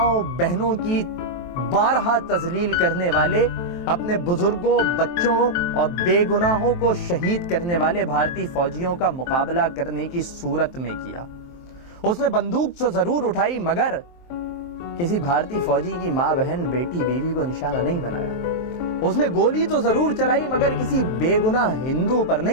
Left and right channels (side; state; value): right; late; 23 ms